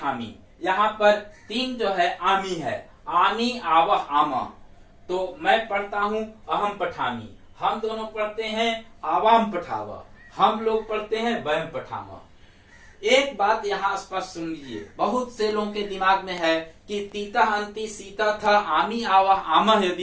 यहाँ पर तीन जो है आमी है, आमी आवह आमा। तो मैं पढ़ता हूं, अहम पठामी, हम दोनों पढ़ते हैं, आवाम पठावा, हम लोग पढ़ते हैं, वयम पठामा। एक बात यहाँ स्पष्ट सुन लीजिए, बहुत से लोगों के दिमाग में है कि तीता अंति सीता था, आमी आवा आमा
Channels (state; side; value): identical; both; correlation 1.00